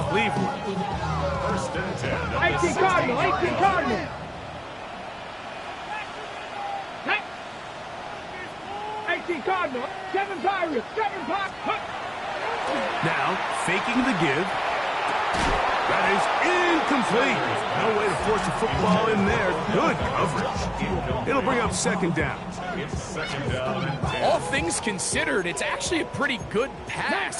Cleveland. 18 Cardinal, 18 Cardinal. Hey. 18 Cardinal, 7 Pirates, 7 Pirates. Now, faking the give. That is incomplete. No way to force a football in there. Good coverage. It'll bring up second down. All things considered, it's actually a pretty good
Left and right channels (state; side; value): identical; both; correlation 1.00